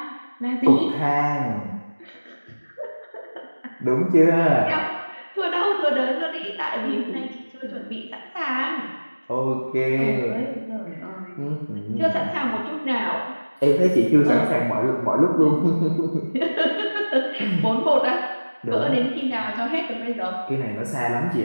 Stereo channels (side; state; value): both; inverted; correlation -1.00